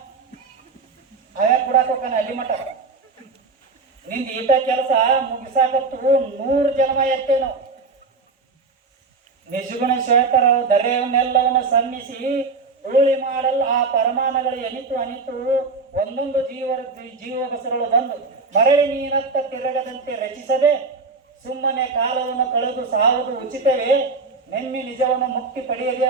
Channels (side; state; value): left; quieter; 4.1 dB